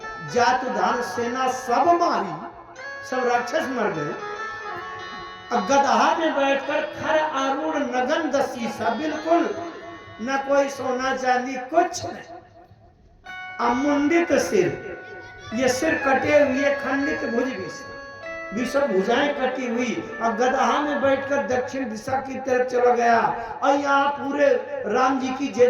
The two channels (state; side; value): identical; both; correlation 1.00